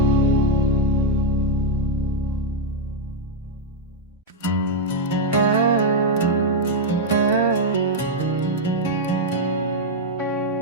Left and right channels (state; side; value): normal; both; correlation -0.01